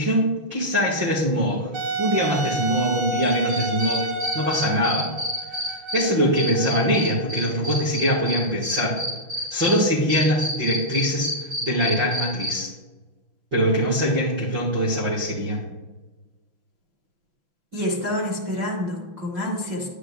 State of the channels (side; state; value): left; late; 6.1 ms